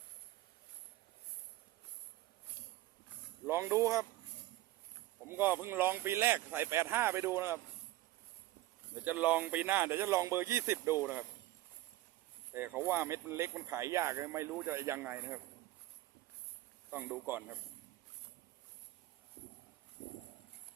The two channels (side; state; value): left; quieter; 16.1 dB